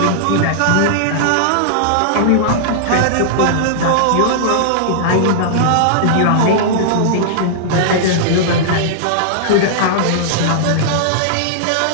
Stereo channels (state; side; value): different; both; correlation -0.01